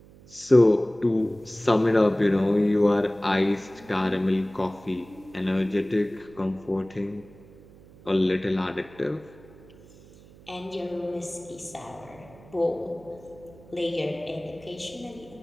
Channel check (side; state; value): right; noise; hum, 23 dB below the sound